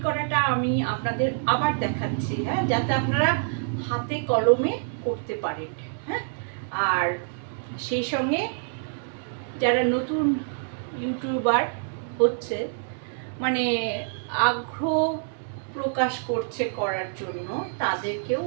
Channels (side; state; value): left; silent; digital silence